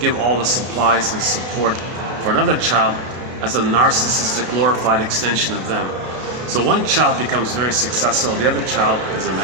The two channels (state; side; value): late; left; 32 ms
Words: give all the supplies and support for another child as a narcissistic, glorified extension of them. So one child becomes very successful, the other child is a